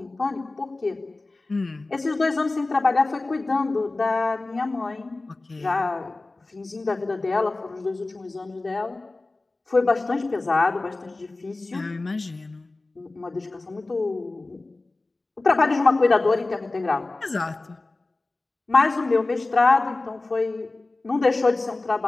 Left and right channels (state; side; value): quieter; right; 3.2 dB